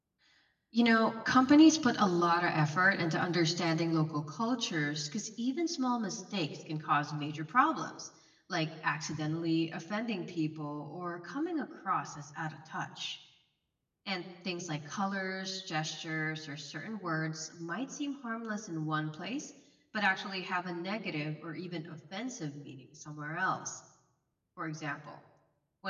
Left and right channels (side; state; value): both; identical; correlation 1.00